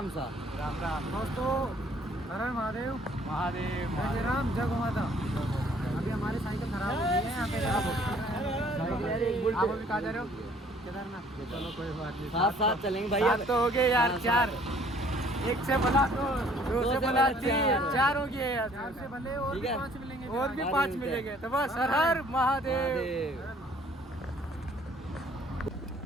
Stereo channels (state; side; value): normal; both; correlation 0.58